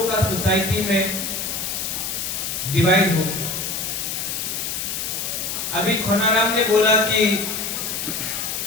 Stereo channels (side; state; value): left; noise; hiss, 3 dB below the sound